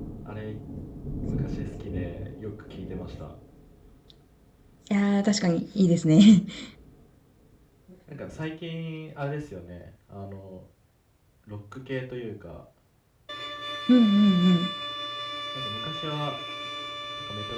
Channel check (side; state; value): both; identical; correlation 1.00